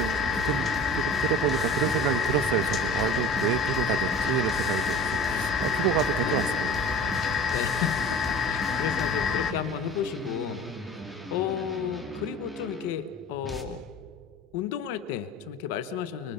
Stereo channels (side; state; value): both; normal; correlation 0.39